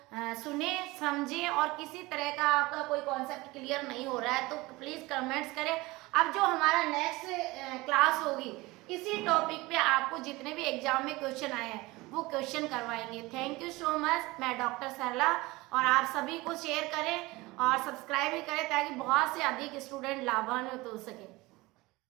सुने समझे, और किसी तरह का आपका कोई कॉन्सेप्ट क्लियर नहीं हो रहा है तो प्लीज कमेंट्स करें। अब जो हमारा नेक्स्ट क्लास होगी, इसी टॉपिक पे आपको जितने भी एग्जाम में क्वेश्चन आए हैं वो क्वेश्चन करवाएंगे। Thank you so much. मैं डॉक्टर सरला, और आप सभी को शेयर करें और सब्सक्राइब भी करें ताकि बहुत से अधिक स्टूडेंट लाभान्वित हो सके।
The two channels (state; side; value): quieter; left; 21.5 dB